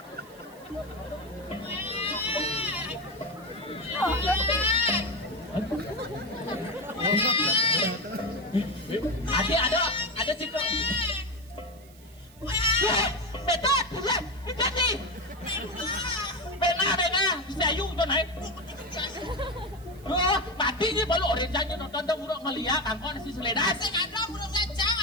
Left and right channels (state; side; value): noise; right; hiss, 25 dB below the sound